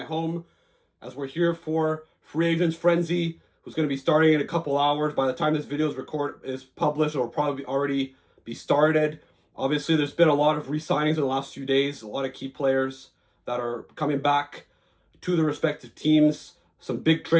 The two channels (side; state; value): both; identical; correlation 1.00